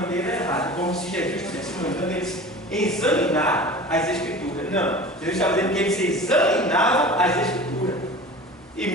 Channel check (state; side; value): normal; both; correlation 0.37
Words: errada, como se Jesus estivesse mandando eles examinar as Escrituras. Não, Jesus estava dizendo que eles examinavam as Escrituras, e